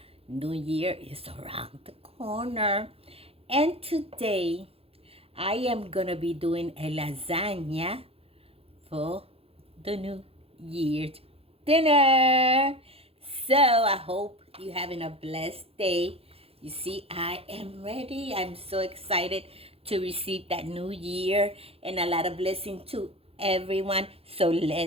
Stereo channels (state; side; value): late; left; 0.28 ms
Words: New Year is around the corner. And today I am going to be doing a lasagna for the New Year's dinner. So I hope you're having a blessed day. You see, I am ready. I'm so excited to receive that new year and a lot of blessing to everyone. So